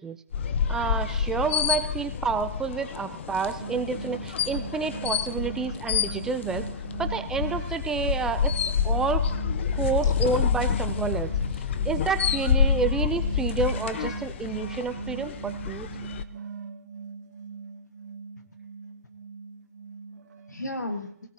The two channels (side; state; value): both; normal; correlation -0.09